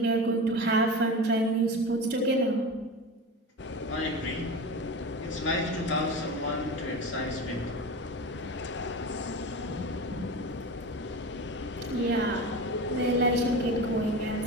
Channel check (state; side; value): normal; both; correlation 0.27